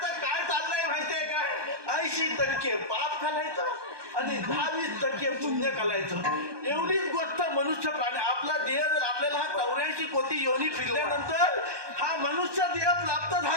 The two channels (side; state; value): left; late; 1.2 ms